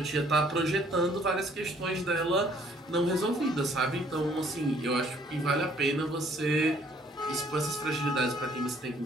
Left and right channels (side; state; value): both; normal; correlation 0.61